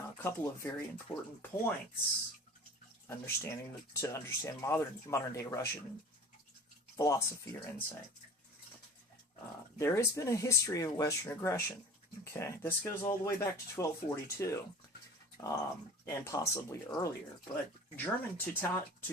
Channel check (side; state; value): both; normal; correlation 0.41